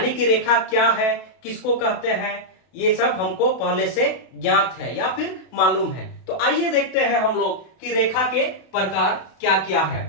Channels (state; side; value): late; right; 32 ms